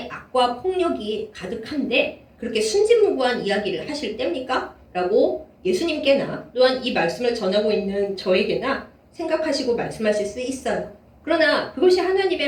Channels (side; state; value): both; identical; correlation 1.00